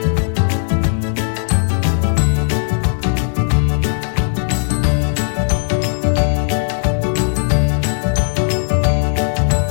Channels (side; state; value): right; silent; digital silence